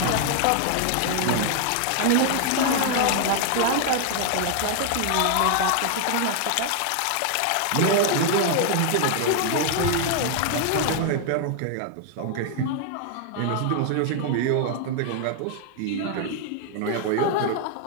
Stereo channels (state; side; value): different; both; correlation 0.00